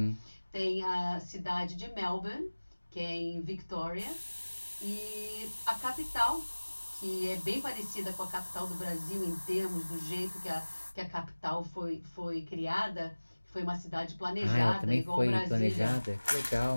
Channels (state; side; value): inverted; both; correlation -1.00